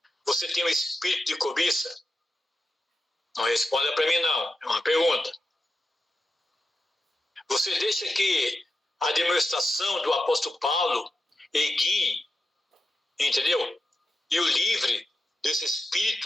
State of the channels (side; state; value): both; normal; correlation 0.90